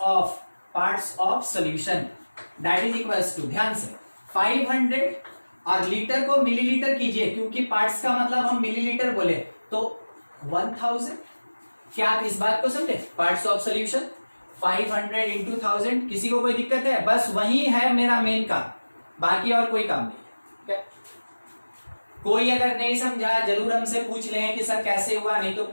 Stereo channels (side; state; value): both; inverted; correlation -1.00